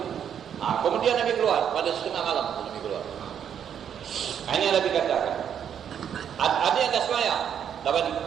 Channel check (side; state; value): left; quieter; 8.7 dB